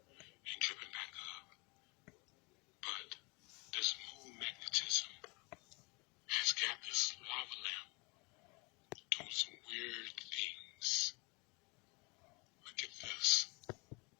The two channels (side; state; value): right; quieter; 29.0 dB